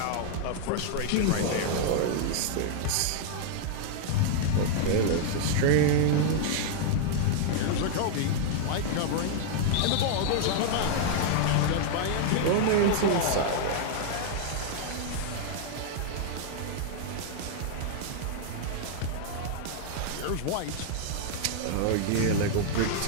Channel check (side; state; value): both; different; correlation -0.01